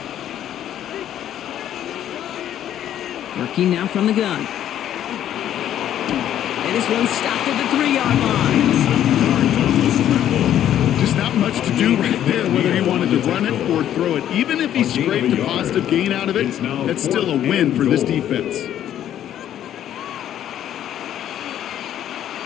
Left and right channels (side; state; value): right; quieter; 11.0 dB